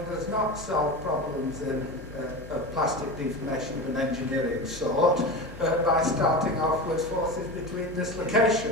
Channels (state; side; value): normal; both; correlation 0.26